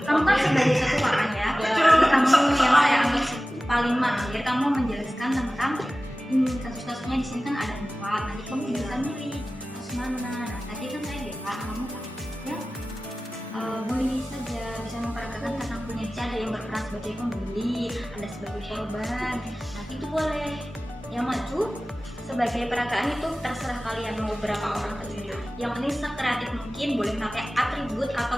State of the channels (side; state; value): both; normal; correlation 0.96